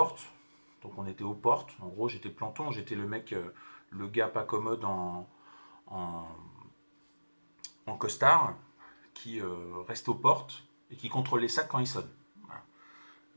Donc on était aux portes. En gros, j'étais planton, j'étais le mec, le gars pas commode en, en costard, qui reste aux portes et qui contrôle les sacs quand ils sonnent. Voilà.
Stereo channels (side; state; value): both; inverted; correlation -1.00